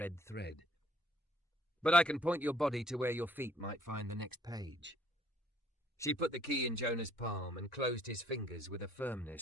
thread. But I can point your body to where your feet might find the next page. She put the key in Jonah's palm and closed his fingers with a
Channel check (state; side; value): normal; both; correlation 0.62